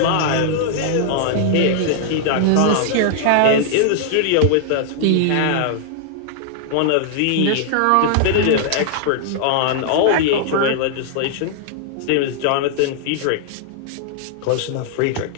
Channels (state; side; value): different; both; correlation -0.01